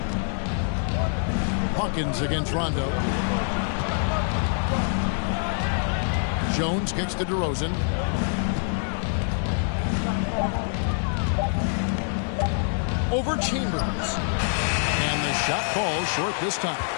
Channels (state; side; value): silent; right; 61 dB below the other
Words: Hawkins against Rondo. Jones kicks to DeRozan. Over Chambers. And the shot falls short this time.